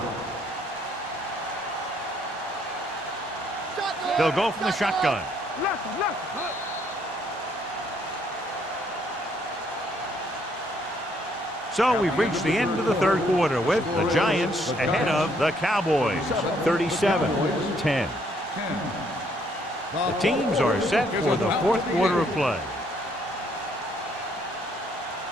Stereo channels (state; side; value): normal; both; correlation 0.68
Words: They'll go from the shotgun. So we've reached the end of the third quarter with the Giants ahead of the Cowboys, 37-10. The teams are set for the fourth quarter of play.